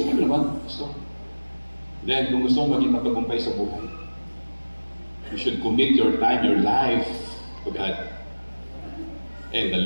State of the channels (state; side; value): inverted; both; correlation -1.00